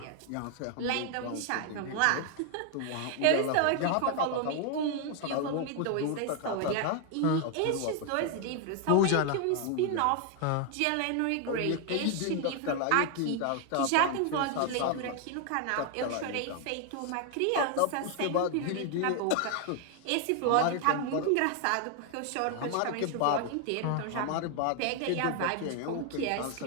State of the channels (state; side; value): different; both; correlation 0.00